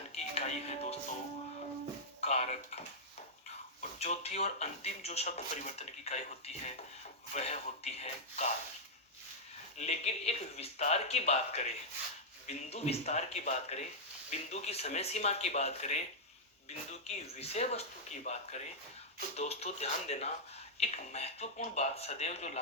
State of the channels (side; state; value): both; normal; correlation -0.07